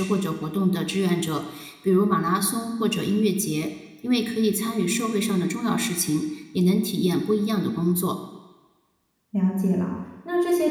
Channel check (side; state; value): both; identical; correlation 1.00